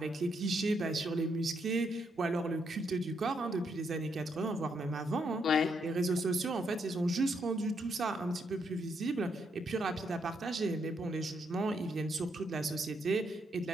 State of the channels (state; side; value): normal; both; correlation 0.77